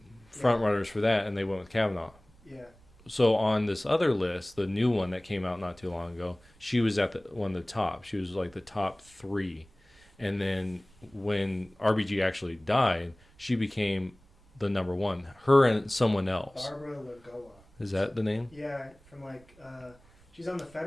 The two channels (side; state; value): right; noise; rumble, 28 dB below the sound